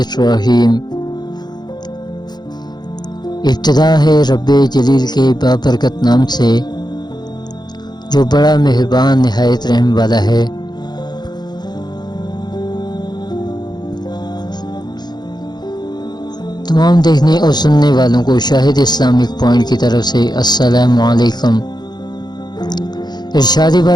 ابتدا ہے رب جلیل کے بابرکت نام سے جو بڑا مہربان نہایت رحم والا ہے۔ تمام دیکھنے اور سننے والوں کو شاہد اسلامک پوائنٹ کی طرف سے السلام علیکم۔ ارشاد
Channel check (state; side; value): late; right; 0.20 ms